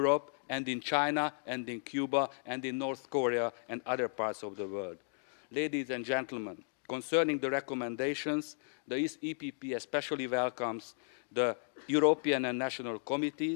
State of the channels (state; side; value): silent; right; digital silence